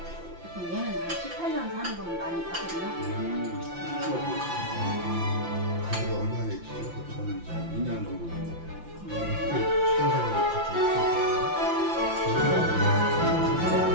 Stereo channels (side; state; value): left; late; 5.8 ms